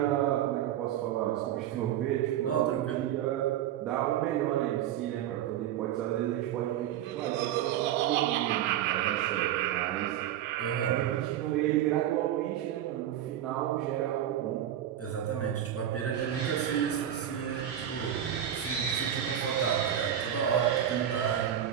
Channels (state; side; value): quieter; left; 11.0 dB